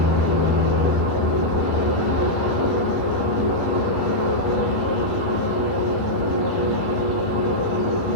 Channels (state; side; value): late; right; 11 ms